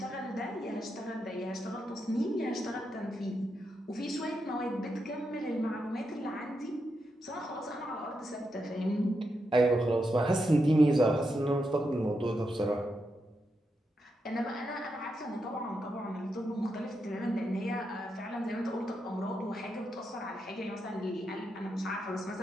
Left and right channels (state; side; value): normal; both; correlation 0.84